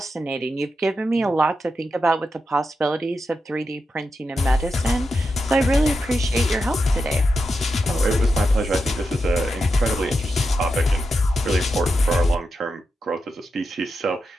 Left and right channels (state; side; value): normal; both; correlation 0.87